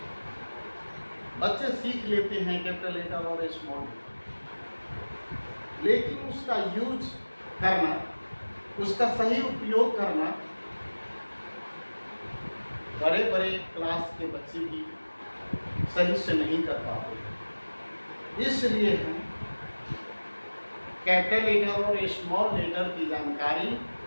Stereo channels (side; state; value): both; inverted; correlation -1.00